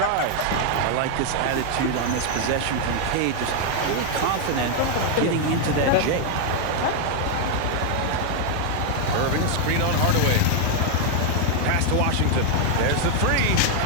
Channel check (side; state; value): both; different; correlation 0.00